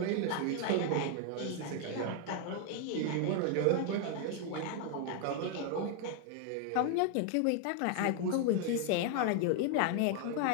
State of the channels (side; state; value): both; different; correlation 0.00